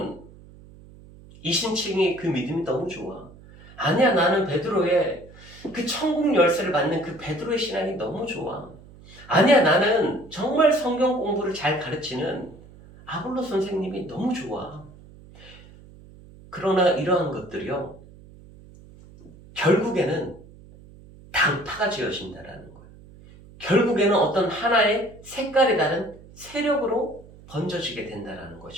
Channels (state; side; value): noise; right; hum, 21 dB below the sound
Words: 이신칭이 그 믿음이 너무 좋아. 아니야, 나는 베드로의 그 천국 열쇠를 받는 그 베드로의 신앙이 너무 좋아. 아니야, 나는 정말 성경 공부를 잘 가르치는 아볼로 선생님이 너무 좋아. 그러나 이러한 것들이요, 결국에는 당파가 지어진다라는 거예요. 결국에는 어떤 하나의 색깔이 다른 세력으로 번져지게 된다라는